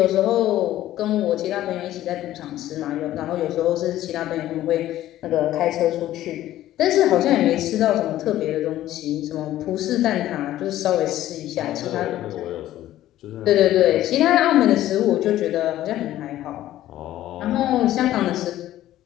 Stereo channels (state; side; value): quieter; right; 13.8 dB